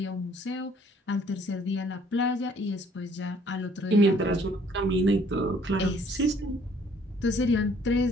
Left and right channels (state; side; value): normal; both; correlation 0.60